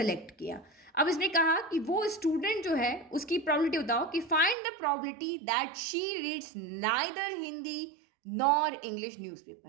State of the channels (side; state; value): left; drops out; at 4.5 s